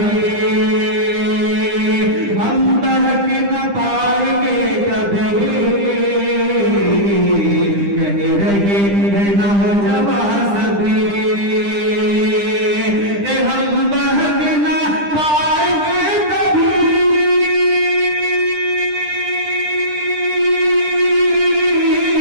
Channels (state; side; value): late; left; 10 ms